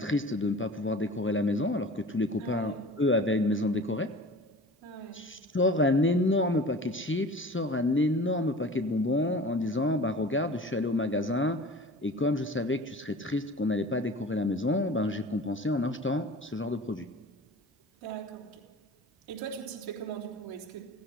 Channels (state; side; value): normal; both; correlation 0.40